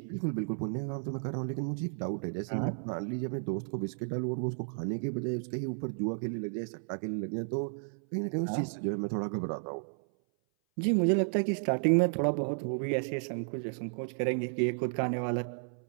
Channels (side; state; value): left; silent; 56 dB below the other